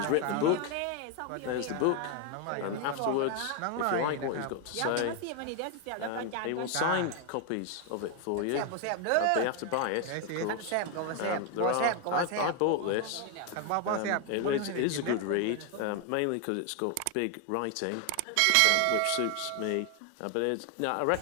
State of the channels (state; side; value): different; both; correlation 0.01